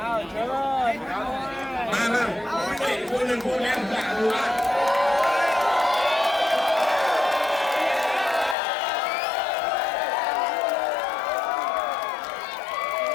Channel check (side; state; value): right; drops out; at 8.6 s